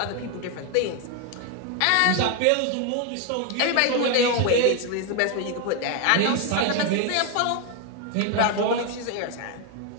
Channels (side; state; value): both; different; correlation 0.01